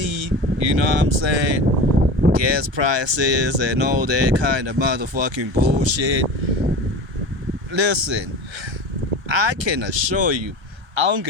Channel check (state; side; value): late; left; 1.2 ms